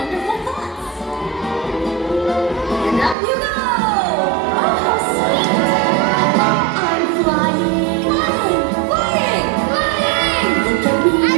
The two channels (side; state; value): left; drops out; at 3.2 s